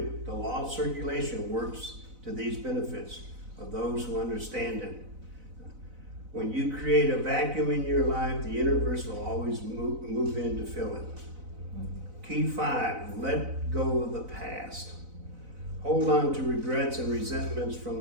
The law of circulation works to these benefits of those who understand it. When you create a vacuum in your life, the universe will always move in to fill it. Key 5, let go of the past. Hold on to regrets and resentments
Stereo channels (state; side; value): late; left; 4.0 ms